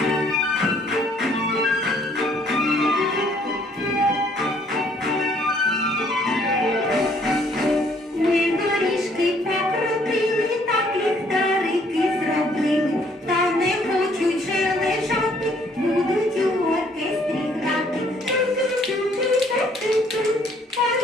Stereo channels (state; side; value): normal; both; correlation 0.63